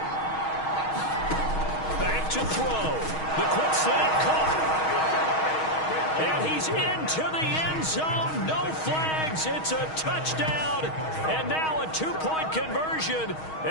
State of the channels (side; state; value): right; late; 6.3 ms